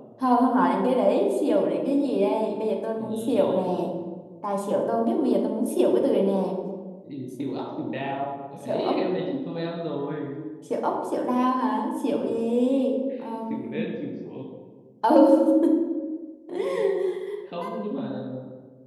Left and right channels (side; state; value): both; identical; correlation 1.00